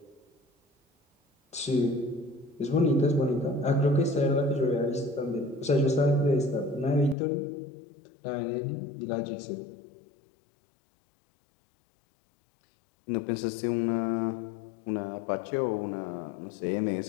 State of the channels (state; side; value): drops out; right; at 7.2 s